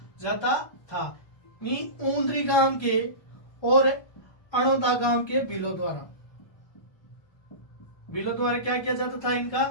जाता था। ऊंद्री गांव के और अणोदा गांव के भीलों द्वारा क्या किया जाता था, इनका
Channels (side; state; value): right; late; 1.3 ms